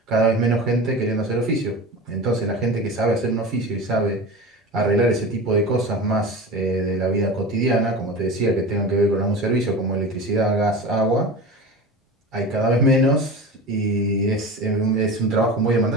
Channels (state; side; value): normal; both; correlation 0.31